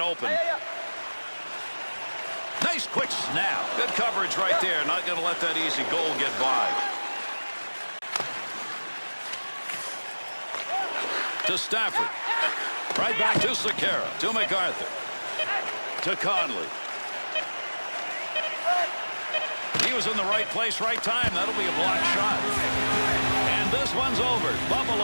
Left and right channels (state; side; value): inverted; both; correlation -1.00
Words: Nice quick snap. Good coverage right there. Not going to let that easy goal get by. To Stafford. Right back to Sekera. To MacArthur. To Conley. He was in the right place, right time. That'll be a block shot. And this one's over.